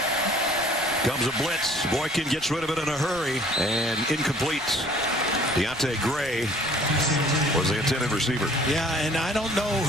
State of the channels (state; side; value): normal; both; correlation 0.54